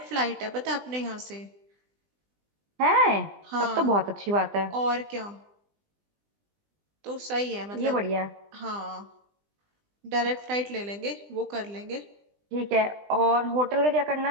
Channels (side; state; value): left; late; 20 ms